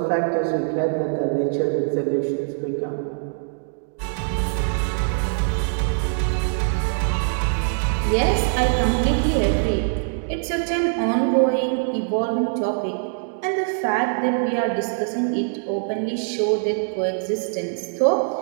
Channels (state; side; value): silent; left; digital silence